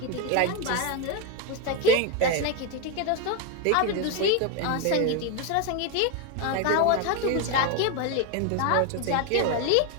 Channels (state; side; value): different; both; correlation 0.02